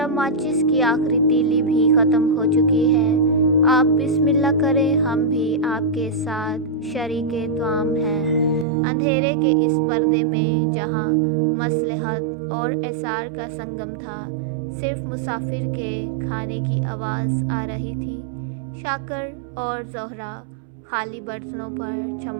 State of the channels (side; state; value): left; drops out; at 8.7 s